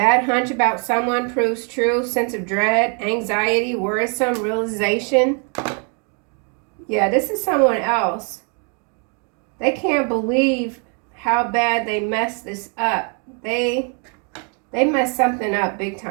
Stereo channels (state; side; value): quieter; left; 39.1 dB